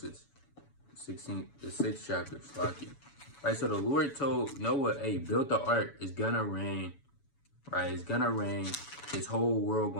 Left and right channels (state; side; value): late; right; 7.0 ms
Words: 16, the 6th chapter. Slocky. Right, so the Lord told Noah, hey, build the ark. It's gonna rain. Right, it's gonna rain. This whole world